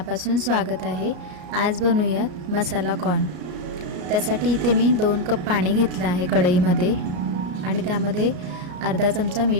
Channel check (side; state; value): left; late; 33 ms